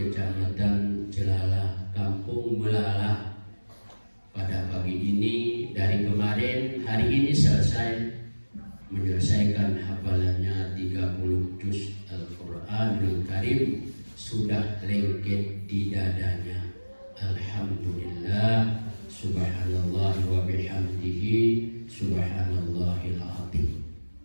Celalah, Kampung Melalah, pada pagi ini dari kemarin hari ini selesai menyelesaikan hafalannya 30 juz Al-Quranul Karim, sudah lengket di dadanya. Alhamdulillah, subhanallah wa bihamdihi, subhanallahil azim.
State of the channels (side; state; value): both; inverted; correlation -1.00